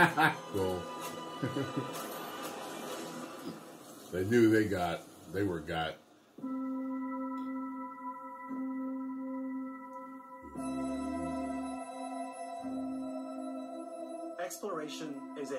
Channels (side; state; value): both; identical; correlation 1.00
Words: Cool. They knew they were got. Exploration is